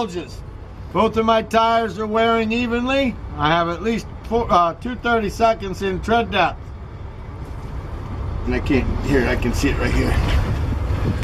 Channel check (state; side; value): identical; both; correlation 1.00